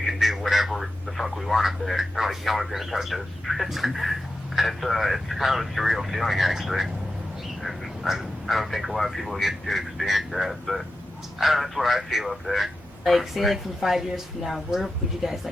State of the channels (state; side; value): normal; both; correlation 0.91